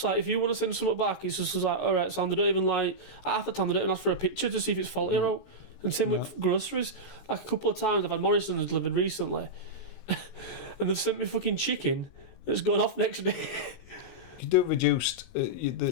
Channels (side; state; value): right; late; 16 ms